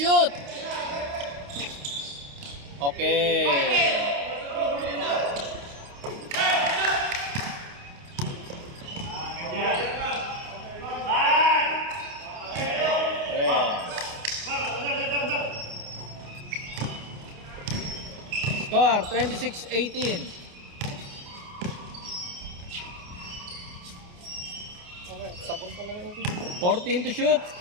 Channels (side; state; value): left; late; 29 ms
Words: Okay. Score 26-18. 14 to shoot.